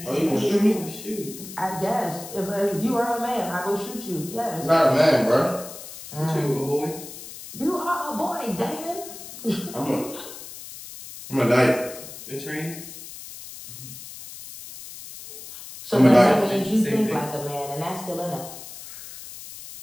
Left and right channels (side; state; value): left; noise; hiss, 13 dB below the sound